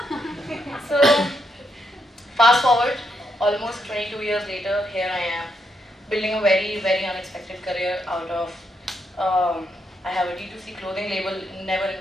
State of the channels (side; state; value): both; normal; correlation 0.79